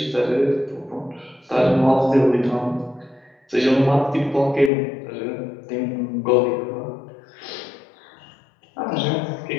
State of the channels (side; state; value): right; drops out; at 4.7 s